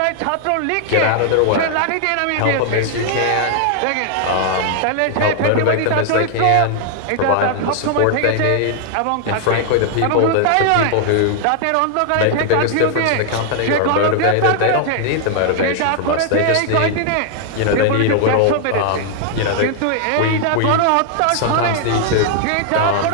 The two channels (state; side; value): different; both; correlation -0.01